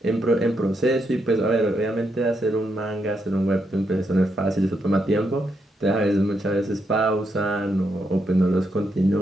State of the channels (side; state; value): both; normal; correlation 0.80